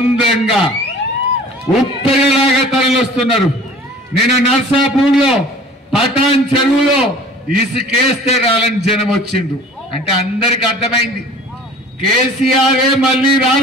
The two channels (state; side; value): normal; both; correlation 0.46